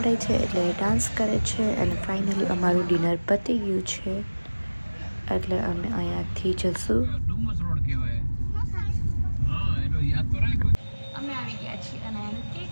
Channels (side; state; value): both; inverted; correlation -1.00